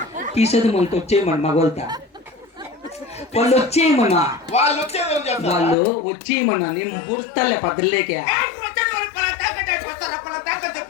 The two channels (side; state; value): right; drops out; at 5.8 s